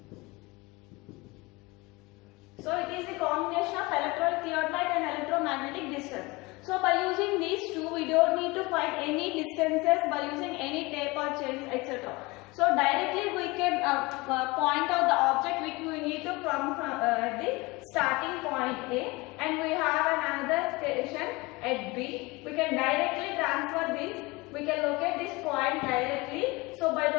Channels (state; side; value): quieter; right; 23.8 dB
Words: So it is a combination of electronic theodolite and electromagnetic distance. So by using these two, we don't need to find any distances by using any tape or chains, etc. So directly we can point out the object which we need to from the starting point A, and we have another station at B. We can directly transfer this. We can locate this point directly. So by